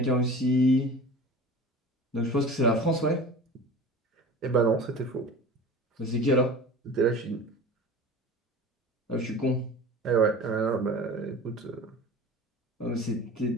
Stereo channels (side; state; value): both; normal; correlation 0.37